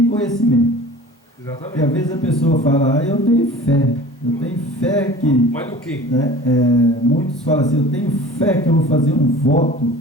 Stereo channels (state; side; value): normal; both; correlation 0.42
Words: conhecimento. Exatamente. E às vezes a pessoa fala, eu tenho fé que... Mas no quê? Né, muitos falam assim, eu tenho fé que eu vou fazer um voto,